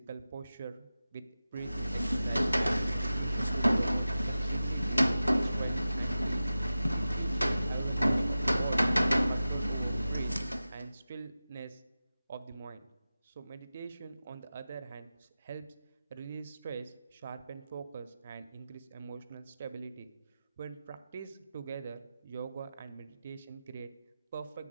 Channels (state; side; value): inverted; both; correlation -0.94